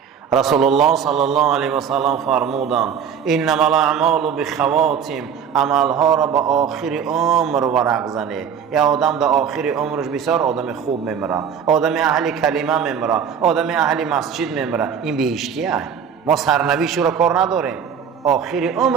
رسول الله صلی الله علیه و سلم فرمودند انما الاعمال بخواتم، عملها را به آخر عمر ورق زنه. یا آدم در آخر عمرش بسیار آدم خوب میمیره، آدم اهل کلمه میمیره، آدم اهل مسجد میمیره، این بهشتیه. ما سرنوشت رو کار نداریم، آخر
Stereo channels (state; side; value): quieter; left; 7.6 dB